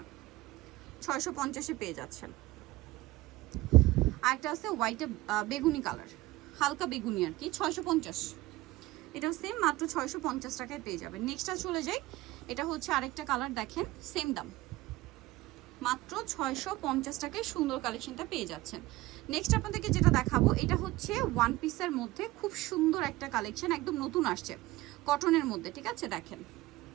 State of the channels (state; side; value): quieter; left; 18.4 dB